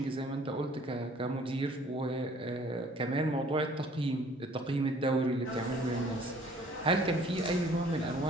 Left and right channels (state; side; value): normal; both; correlation 0.55